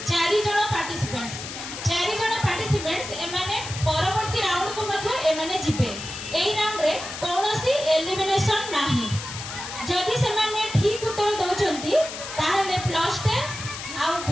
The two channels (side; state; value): left; noise; hiss, 9 dB below the sound